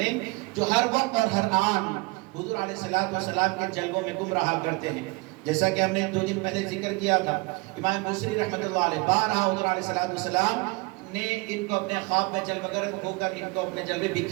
جو ہر وقت اور ہر آن حضور علیہ السلام کے جلووں میں گم رہا کرتے ہیں۔ جیسا کہ ہم نے 2 دن پہلے ذکر کیا تھا، امام بصری رحمۃ اللہ علیہ بارہا حضور علیہ السلام نے ان کو اپنے خواب میں جلوگر ہو کر ان کو اپنے جلوے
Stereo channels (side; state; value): left; quieter; 26.3 dB